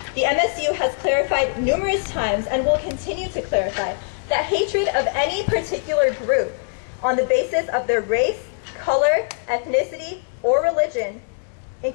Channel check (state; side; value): silent; right; digital silence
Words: The MSU has clarified numerous times and will continue to clarify that hatred of any particular group on the basis of their race, color, ethnicity, or religion,